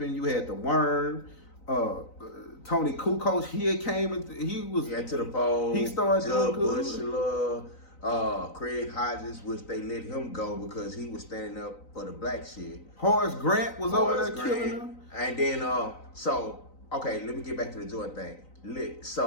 you had the Worm, Tony Kukoc. He came and he was to the pole. He started Jud doing good. Craig Hodges, which they let him go because he was standing up for the black shit. Horace Grant was over there killing him. And then, let me get back to the Jordan thing.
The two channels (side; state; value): right; late; 3.9 ms